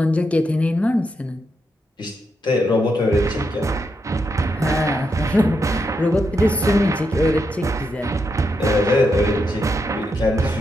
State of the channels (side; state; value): both; normal; correlation 0.83